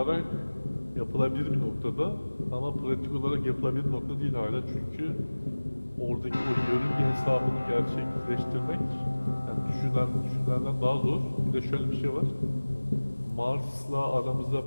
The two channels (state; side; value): inverted; both; correlation -1.00